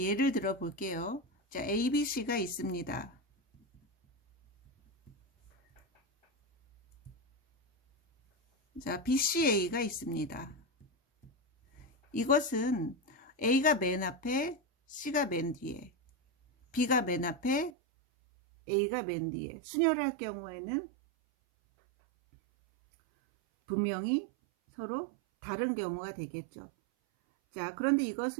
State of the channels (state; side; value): drops out; left; at 17.7 s